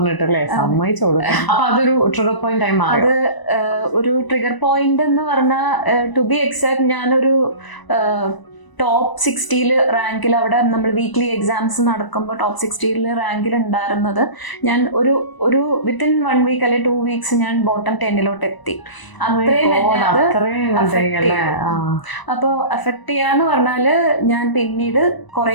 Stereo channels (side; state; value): right; late; 1.0 ms